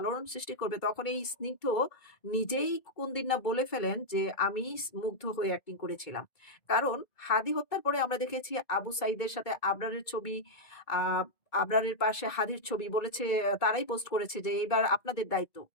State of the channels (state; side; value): late; right; 2.2 ms